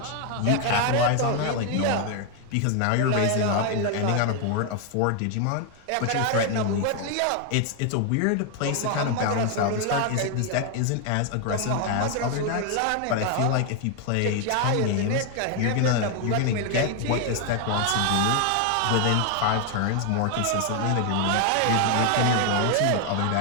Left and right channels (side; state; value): both; different; correlation 0.01